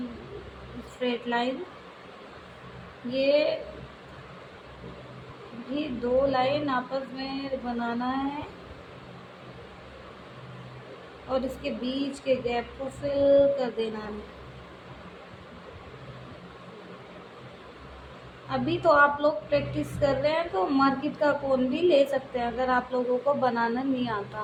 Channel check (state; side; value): identical; both; correlation 1.00